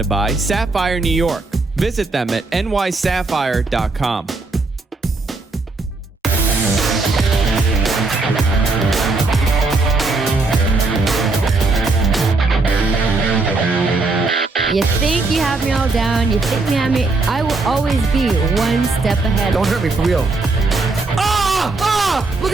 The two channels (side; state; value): left; quieter; 3.5 dB